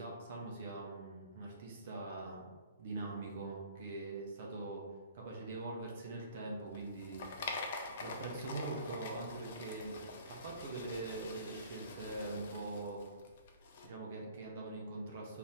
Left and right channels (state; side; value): inverted; both; correlation -0.51